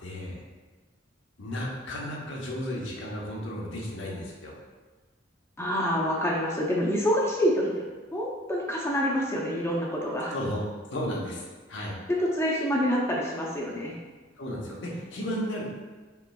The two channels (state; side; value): normal; both; correlation 0.50